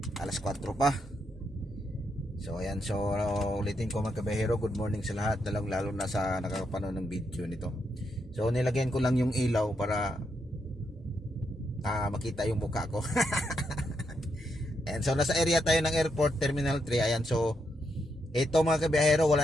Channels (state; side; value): normal; both; correlation 0.81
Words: alas 4 pa. So ayan, so ulitin ko mga kabiyahero, good morning sa lahat, lalo na sa nakakapanood ng video nito. So nilagyan ko lang yung ilaw para makita yung mukha ko. Ayan, so nasa area tayo ng airport, terminal 3. Ayan, so ito mga kabiyahero,